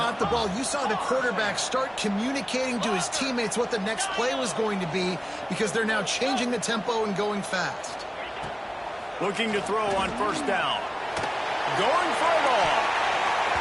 the ball, you saw the quarterback start communicating to his teammates what the next play was going to be because they're now changing the tempo and going fast. Looking to throw on first down. Going for it all.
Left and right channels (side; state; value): both; identical; correlation 1.00